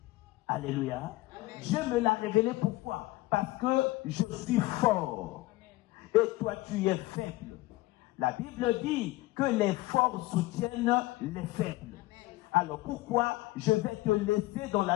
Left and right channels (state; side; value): quieter; right; 18.9 dB